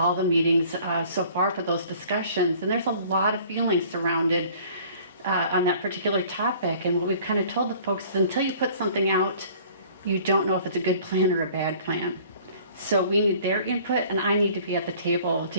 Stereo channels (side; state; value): both; inverted; correlation -0.51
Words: the meetings so far for those discussions, and there's a lot of feelings surrounded on that particular topic. And what we've kind of told the folks is until you put something out, you don't know if it's a good plan or a bad plan. So we need their input, and I need to be at the table to